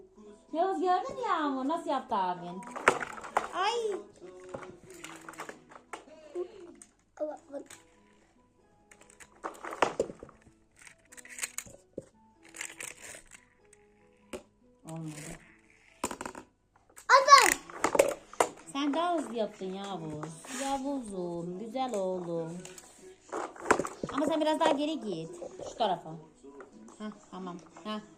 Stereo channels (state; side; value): identical; both; correlation 1.00